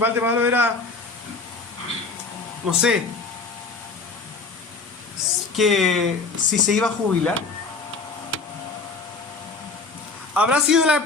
de Pablo era, no sé, que si se iba a jubilar? ¿Habrá sido la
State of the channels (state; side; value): quieter; right; 4.1 dB